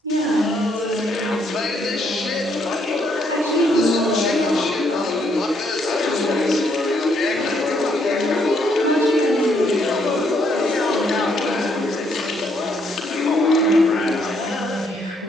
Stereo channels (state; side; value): normal; both; correlation 0.72